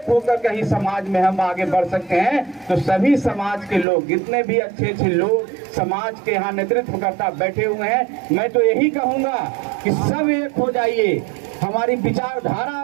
होकर कहीं समाज में हम आगे बढ़ सकते हैं। तो सभी समाज के लोग, जितने भी अच्छे अच्छे लोग समाज के यहाँ नेतृत्व करता बैठे हुए हैं, मैं तो यही कहूँगा कि सब एक हो जाइए। हमारी विचारधारा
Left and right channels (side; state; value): left; drops out; at 3.9 s